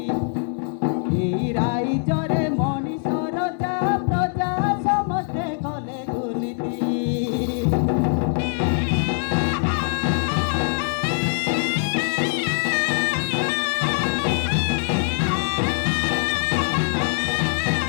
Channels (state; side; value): silent; right; 64 dB below the other